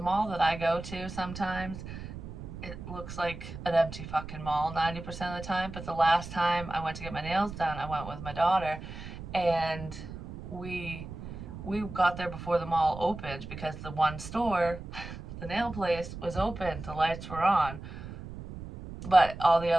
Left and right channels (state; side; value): noise; right; rumble, 11 dB below the sound